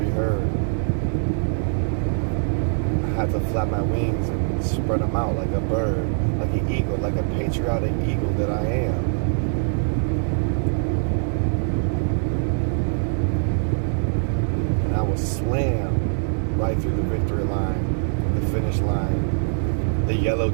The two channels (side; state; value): left; silent; digital silence